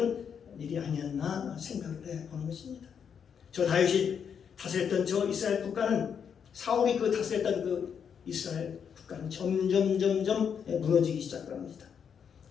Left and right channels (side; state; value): right; quieter; 7.3 dB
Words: 일이 아니었나 생각을 해보는 것입니다. 저 다윗이 다스렸던 저 이스라엘 국가는 사울이 그 다스렸던 그 이스라엘 국가는 점점 무너지기 시작합니다.